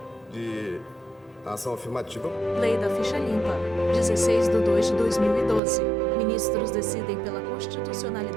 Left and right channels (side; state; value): left; drops out; at 5.6 s